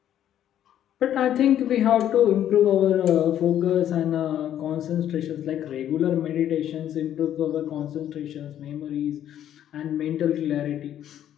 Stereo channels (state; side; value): quieter; right; 10.9 dB